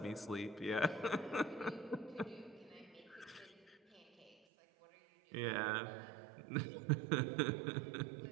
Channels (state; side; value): drops out; left; at 4.4 s